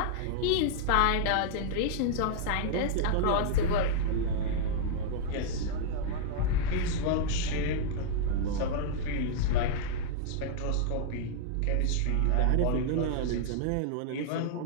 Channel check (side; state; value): both; different; correlation -0.01